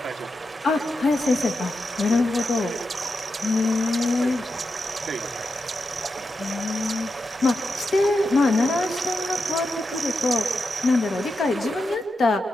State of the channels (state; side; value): normal; both; correlation 0.88